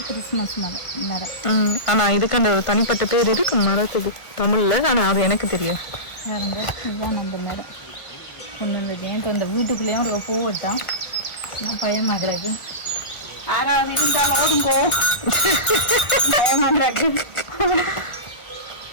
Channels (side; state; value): right; late; 1.4 ms